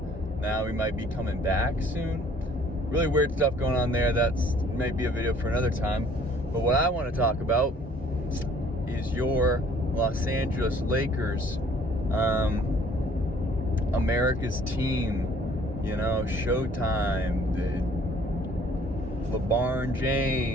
Now he might be coming back soon. Really weird stuff going on there. That's maybe a video for another time. But what I want to talk about is your Los Angeles Lakers, America's team, Showtime, LeBron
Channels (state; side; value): normal; both; correlation 0.57